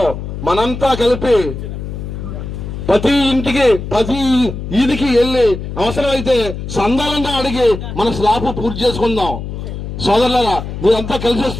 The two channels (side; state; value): left; noise; hum, 7 dB below the sound